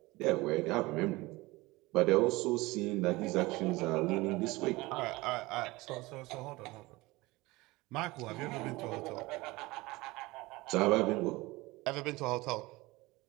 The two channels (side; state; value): left; quieter; 21.4 dB